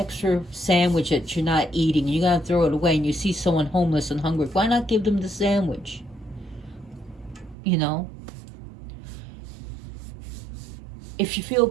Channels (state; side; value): drops out; left; at 7.6 s